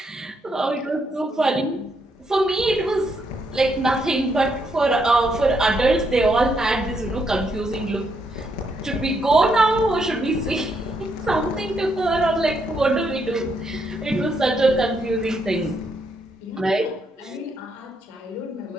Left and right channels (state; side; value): normal; both; correlation 0.76